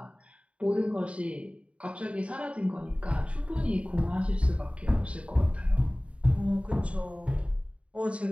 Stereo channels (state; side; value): late; left; 0.062 ms